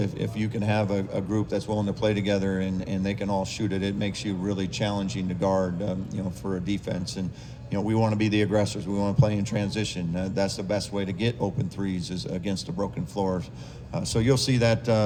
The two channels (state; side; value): identical; both; correlation 1.00